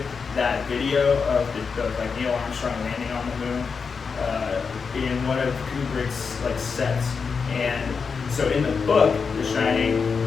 that video of like Neil Armstrong landing on the moon in one of Kubrick's like sets. And so in the book, The Shining,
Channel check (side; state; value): right; quieter; 5.5 dB